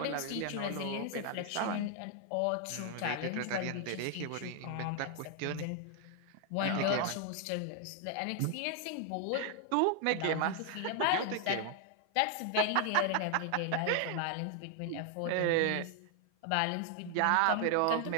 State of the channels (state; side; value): different; both; correlation 0.00